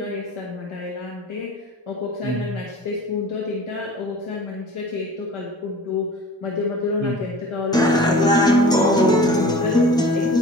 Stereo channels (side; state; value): both; normal; correlation 0.42